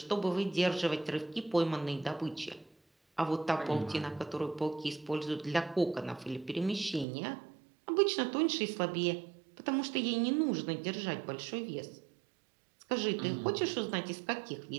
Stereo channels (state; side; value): drops out; left; at 7.1 s